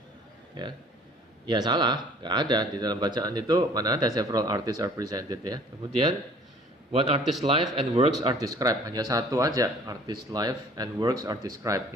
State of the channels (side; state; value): both; normal; correlation 0.52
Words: Ya, salah, nggak ada di dalam bacaan itu, mana ada several artists are presented, ya. Kemudian one artist life and works are described, hanya satu aja, artist life and works are described,